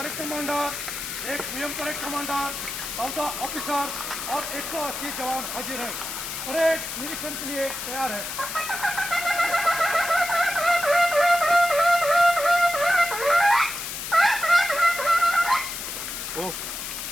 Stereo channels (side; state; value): left; noise; hiss, 6 dB below the sound